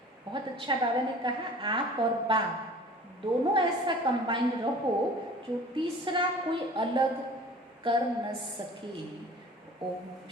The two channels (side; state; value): both; normal; correlation 0.44